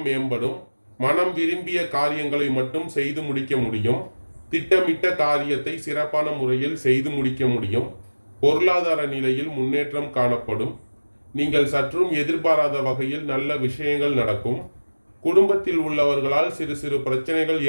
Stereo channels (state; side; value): inverted; both; correlation -1.00